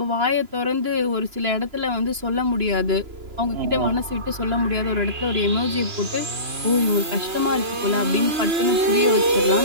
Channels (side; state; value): left; late; 3.0 ms